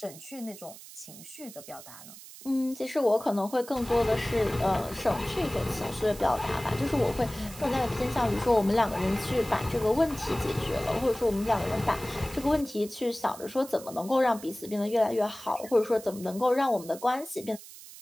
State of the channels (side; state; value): right; noise; hiss, 16 dB below the sound